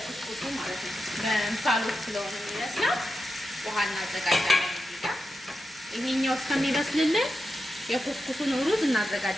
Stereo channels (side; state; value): both; normal; correlation 0.89